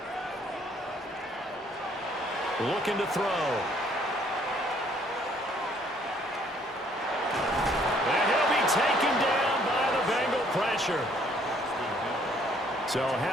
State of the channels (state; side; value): normal; both; correlation 0.63